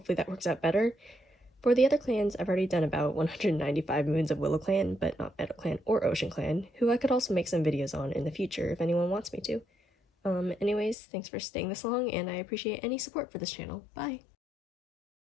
that works out better. For the other clans, I've already done about 195 moons of WillowClan, but not MeadowClan or OceanClan, who I could also make some videos on in the future if anyone wants me to. Anyways, thanks for staying this long, and I appreciate any support for this channel. Bye!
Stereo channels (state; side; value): drops out; right; at 11.0 s